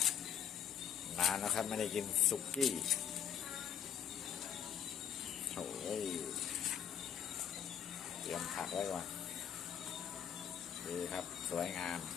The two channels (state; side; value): quieter; right; 8.9 dB